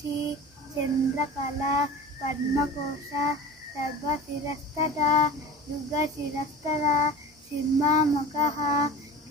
चन्द्रकला पद्मकोशा सर्वशिरस्तदा युगशिरस्तदा सिंहमुखः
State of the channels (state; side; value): normal; both; correlation 0.36